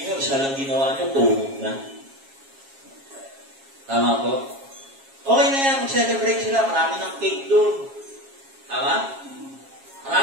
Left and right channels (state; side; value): late; left; 7.3 ms